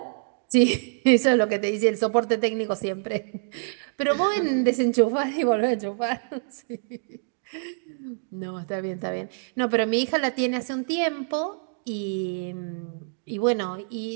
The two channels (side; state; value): left; silent; digital silence